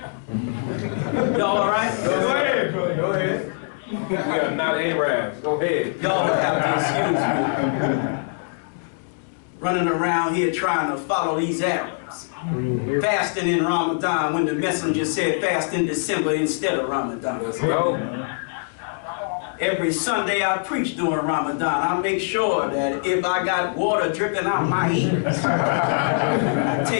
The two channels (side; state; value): right; silent; digital silence